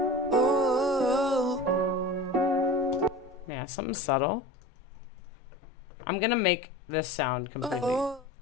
Yeah, something subtle. I'm going to make this sound completely...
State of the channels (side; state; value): both; normal; correlation 0.34